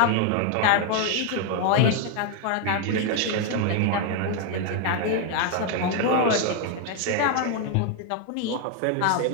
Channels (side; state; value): both; different; correlation 0.01